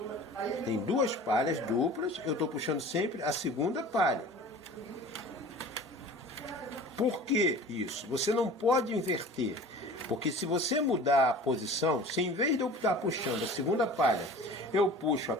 Tem duas palhas duplas, eu estou puxando sempre a segunda palha. Por que isso? Você não pode inverter, porque se você mudar a posição, se em vez de eu estar puxando a segunda palha, eu puxo a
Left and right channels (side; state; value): both; normal; correlation 0.42